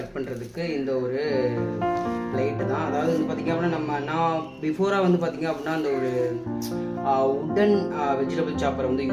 பண்ணுறதுக்கு இந்த ஒரு பிளேட்டு தான். அதாவது வந்து பார்த்திங்க அப்படின்னா நான் பிஃபோராக வந்து பார்த்திங்க அப்படின்னா அந்த ஒரு உட்டன் வெஜிடபிள் சாப்பரை வந்து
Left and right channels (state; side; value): identical; both; correlation 1.00